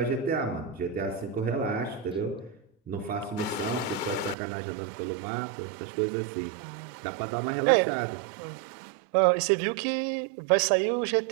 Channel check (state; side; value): drops out; left; at 4.4 s